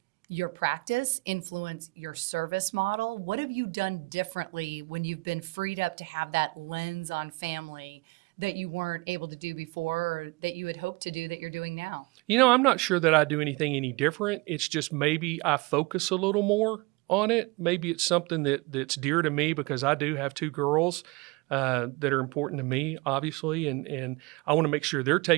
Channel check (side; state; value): left; quieter; 25.2 dB